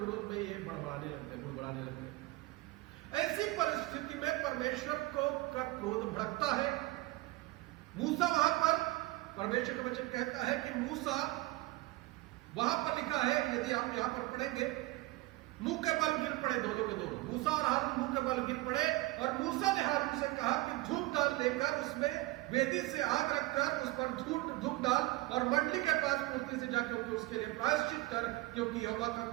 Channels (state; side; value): quieter; left; 19.8 dB